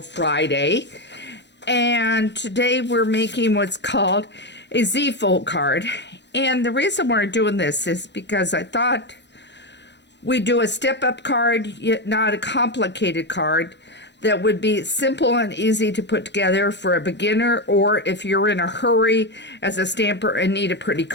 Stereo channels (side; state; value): right; late; 0.51 ms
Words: Friday. And today we're making what's called a Z-fold card. And the reason we're doing this is because I thought we'd do a step-up card, yet not a complicated card, that would be simple and easy to put together for a beginner, or if you're in a hurry as a stamper and need a pretty